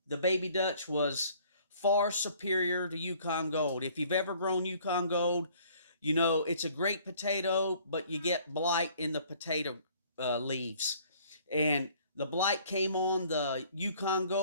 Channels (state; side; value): inverted; both; correlation -0.57